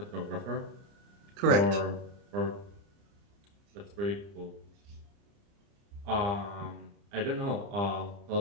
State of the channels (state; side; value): late; left; 30 ms